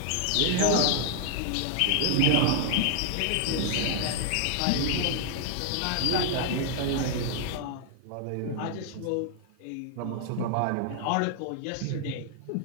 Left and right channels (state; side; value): different; both; correlation 0.00